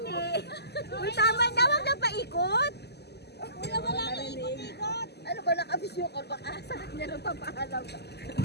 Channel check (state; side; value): late; right; 0.48 ms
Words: Uy, tama na, wag na paikot. Kuya, wala na ikot-ikot! Ano ba, nakabisyo ka? Baka sakit niya nung papaalam ka.